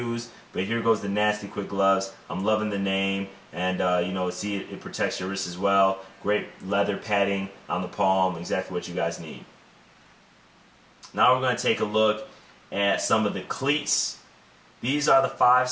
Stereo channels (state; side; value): identical; both; correlation 1.00